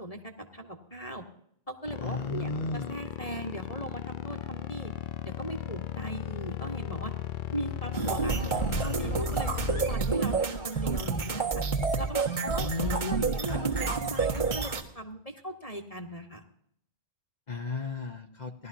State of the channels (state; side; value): late; right; 1.4 ms